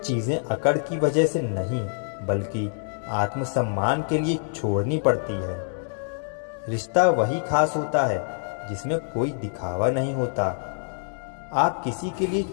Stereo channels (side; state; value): right; silent; digital silence